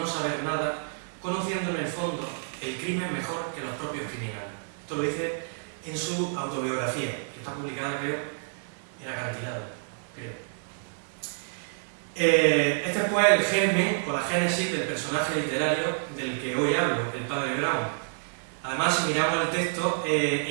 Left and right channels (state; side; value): silent; left; digital silence